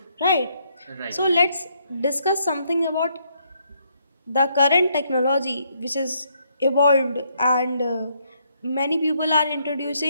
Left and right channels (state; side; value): inverted; both; correlation -0.72